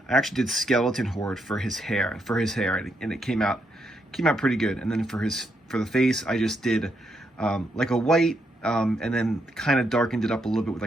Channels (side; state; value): both; normal; correlation 0.78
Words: I actually did skeleton horde for his hair, and it came out pretty good. And then for the face, I just did like a white, and then kind of darkened it up a little bit with